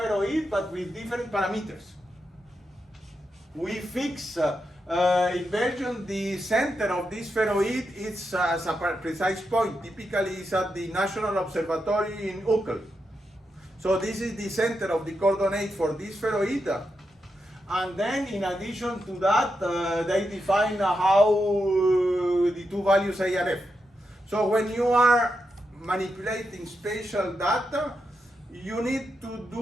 but with different parameters. We fix in Belgium the center of this spheroid is as a precise point. Typically, it's at the National Observatory in Uccle. So this is the center of the coordinate for this spheroid. And then, in addition to that, they define how the two values A and F. So when you are manipulating spatial data, you need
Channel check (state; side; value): normal; both; correlation 0.85